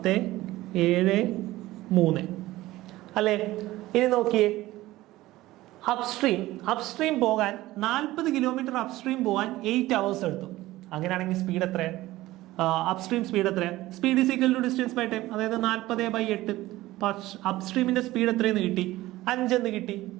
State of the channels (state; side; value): quieter; left; 17.2 dB